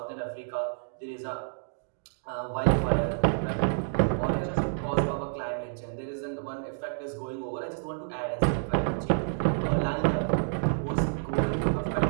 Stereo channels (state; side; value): silent; left; digital silence